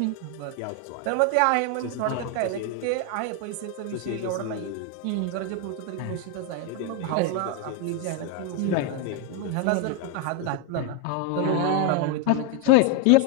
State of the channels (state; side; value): different; both; correlation 0.01